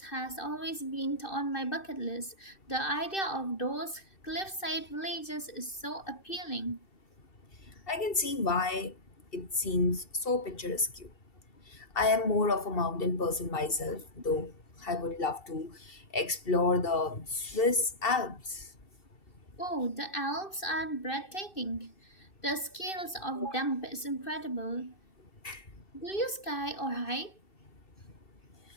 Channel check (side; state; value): right; late; 2.7 ms